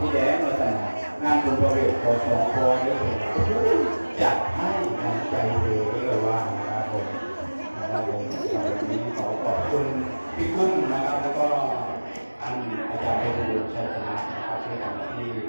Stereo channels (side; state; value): both; inverted; correlation -1.00